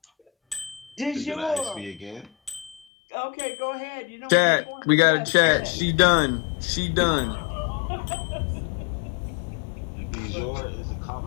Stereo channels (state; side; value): drops out; right; at 2.8 s